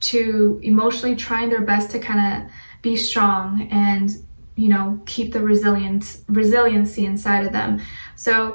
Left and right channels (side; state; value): both; inverted; correlation -1.00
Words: to emotionally trying their best to kind of be strong and, you know, keep the resiliency inside of them.